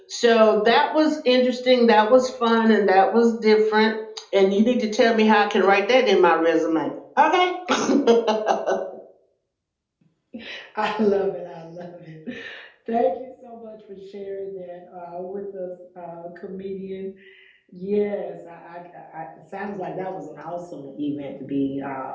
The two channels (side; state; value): both; identical; correlation 1.00